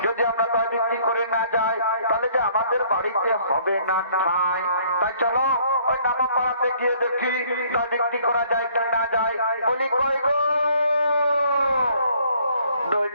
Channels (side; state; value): both; inverted; correlation -0.61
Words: যদি আমরা দই বিক্রি করে না যাই তাহলে যে আমাদের বাড়িতে হবে না ঠাঁই। তাই চলো ওই নামা পাড়াতে গিয়ে দেখি দই বিক্রি করা যায় কি না যায়। বলি কই গো দই